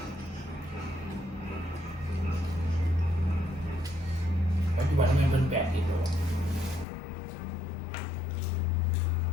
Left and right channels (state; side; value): drops out; right; at 6.9 s